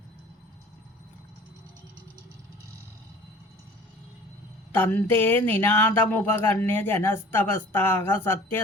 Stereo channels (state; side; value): normal; both; correlation 0.46